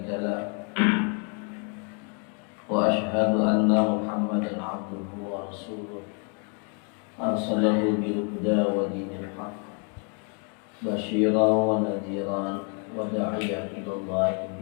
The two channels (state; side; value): quieter; right; 38.8 dB